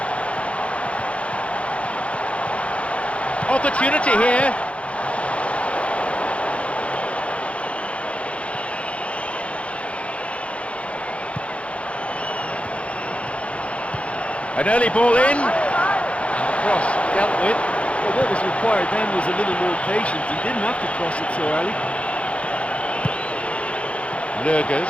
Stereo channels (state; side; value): late; right; 0.062 ms